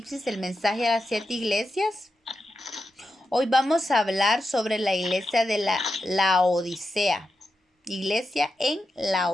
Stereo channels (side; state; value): both; normal; correlation 0.88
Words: el mensaje a las 7 iglesias. Hoy vamos a hablar sobre la iglesia de la Odisea. Iglesia en la